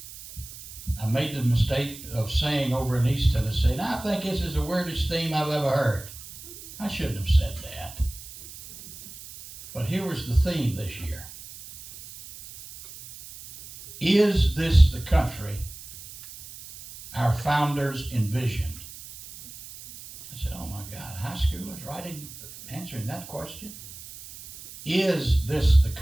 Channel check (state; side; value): noise; right; hiss, 15 dB below the sound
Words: I made the mistake of saying over in East Tennessee, and I think this is the weirdest theme I've ever heard. I shouldn't have said that. But here was the theme this year. Is this the country our founders envisioned? I said, oh my God, high schoolers answering that question? Is this the